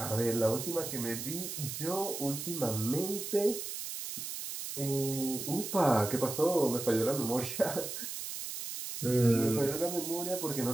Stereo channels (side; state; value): right; noise; hiss, 6 dB below the sound